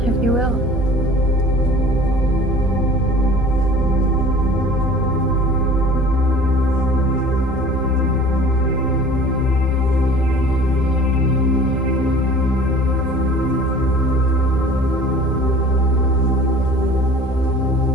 if you will.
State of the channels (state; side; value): normal; both; correlation 0.46